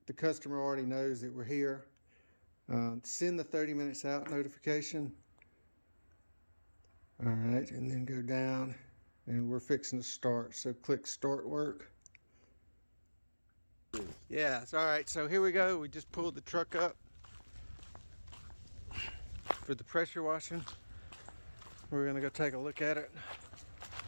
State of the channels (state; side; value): inverted; both; correlation -1.00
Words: the customer already knows that we're here. Send the 30 minutes out notification. All right, and then go down and we're fixing to start. So click start work. Yeah, it's all right. So here we go. We just pulled the truck up for the pressure washing. We're gonna go take a look at it.